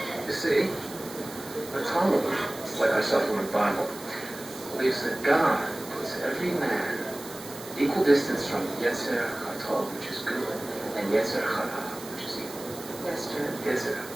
You see, the Talmud, like our supplement Bible, believes that God puts every man equal distance from Yetzer Hatov, which is good, and Yetzer Hara, which is evil. Yes, sir. Yetzer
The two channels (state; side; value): noise; right; hiss, 15 dB below the sound